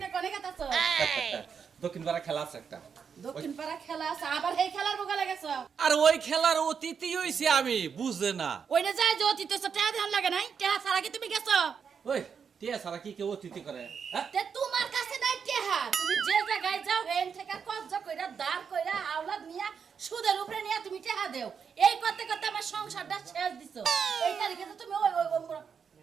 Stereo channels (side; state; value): left; quieter; 6.6 dB